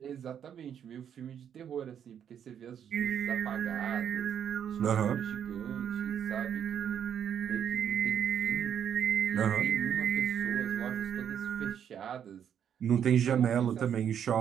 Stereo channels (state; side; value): quieter; left; 8.8 dB